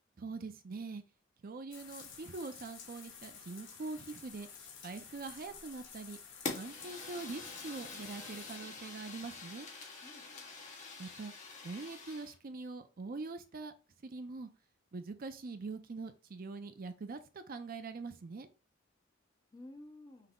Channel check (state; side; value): normal; both; correlation 0.41